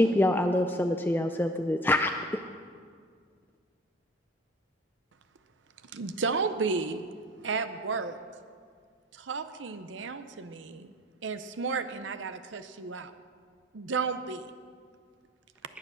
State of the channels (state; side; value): normal; both; correlation 0.46